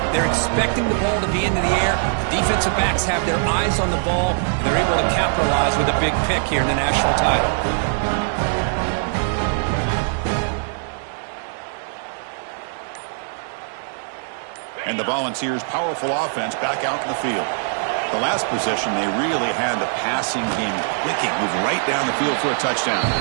They're expecting the ball to be into the air. The defensive backs have their eyes on the ball, and they're able to capitalize with a big pick here in the national title. And the Volunteers' powerful offense back out in the field. The last possession, they really had the passing game clicking, move right down the field for a touchdown.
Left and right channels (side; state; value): left; silent; digital silence